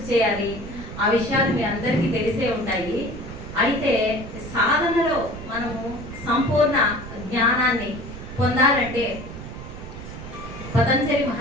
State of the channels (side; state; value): right; noise; rumble, 11 dB below the sound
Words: చేయాలి, ఆ విషయాలు మీ అందరికీ తెలిసే ఉంటాయి. అయితే సాధనలో మనము సంపూర్ణ జ్ఞానాన్ని పొందాలంటే పతంజలి